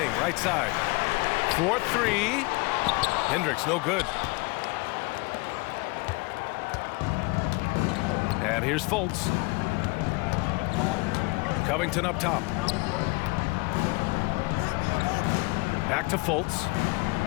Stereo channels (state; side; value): quieter; right; 26.2 dB